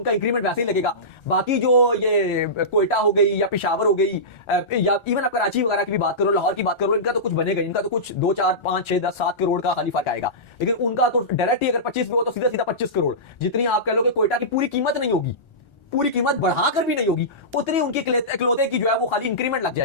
इंक्रीमेंट वैसे ही लगेगा। बाकी जो ये कोयटा हो गई या पेशावर हो गई या इवन आप कराची वगैरह की भी बात करो, लाहौर की बात करो, इनका तो कुछ बनेगा, इनका तो कुछ 2, 4, 5, 6, 10, 7 करोड़ का खाली फर्क आएगा। लेकिन उनका तो डायरेक्ट ही अगर 25 भी हो तो सीधा 25 करोड़, जितनी आप कह लो कि कोयटा की पूरी कीमत नहीं होगी, पूरी कीमत बढ़ाकर भी नहीं होगी, उतनी उनकी इकलौते की जो है वो खाली इंक्रीमेंट लग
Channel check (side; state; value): right; late; 1.3 ms